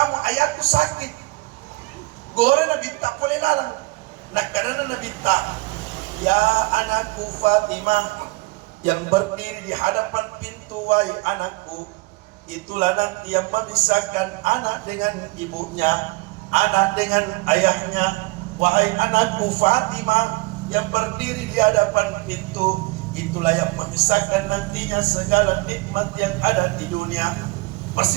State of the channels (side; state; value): left; quieter; 23.9 dB